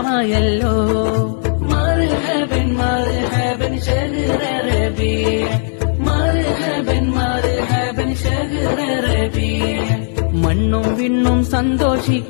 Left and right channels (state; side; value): silent; right; digital silence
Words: മർഹബൻ മർഹബൻ ശഹ്റ റബീഅ്, മർഹബൻ മർഹബൻ ശഹ്റ റബീഅ്. മണ്ണും വിണ്ണും